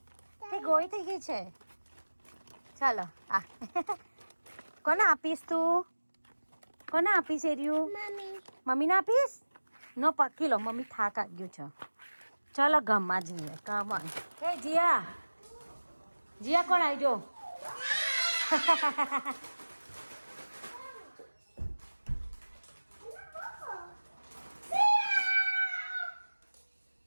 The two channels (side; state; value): both; inverted; correlation -1.00